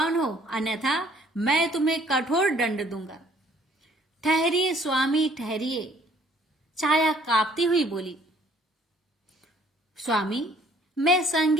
हो, अन्यथा मैं तुम्हें कठोर दंड दूंगा। ठहरिए स्वामी ठहरिए, छाया कांपती हुई बोली। स्वामी, मैं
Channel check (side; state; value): both; normal; correlation 0.60